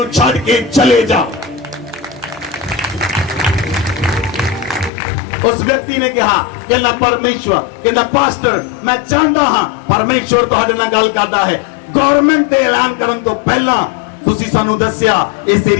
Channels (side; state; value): right; drops out; at 4.9 s